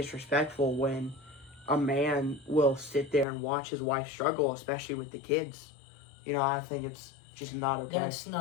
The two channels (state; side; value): drops out; right; at 3.2 s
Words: when a man will sit there and watch his wife struggle, especially with the kids. You know, I think it's just not okay. That's